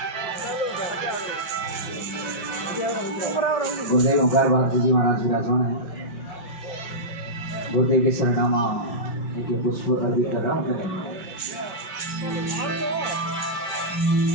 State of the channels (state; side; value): late; right; 5.4 ms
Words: गुरुदेव ओंकार भारती जी महाराज विराजमान है। गुरुदेव के सरनामा एक पुष्प अर्पित कर रहा हूँ।